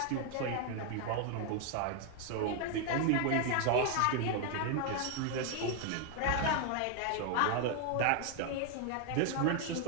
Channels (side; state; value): both; different; correlation 0.00